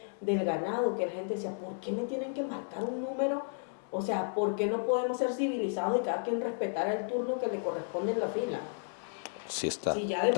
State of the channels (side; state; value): right; silent; digital silence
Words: del ganado, que la gente decía, ¿por qué me tienen que marcar un número? O sea, ¿por qué no podemos ser civilizados y cada quien respetar el turno que le corresponde en la fila? Sí está. Si ya de